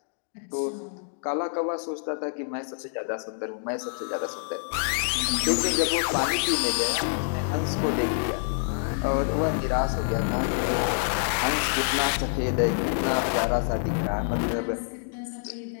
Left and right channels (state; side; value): silent; right; digital silence